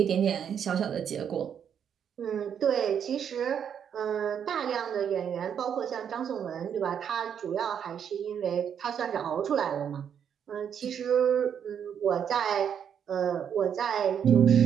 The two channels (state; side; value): quieter; left; 8.3 dB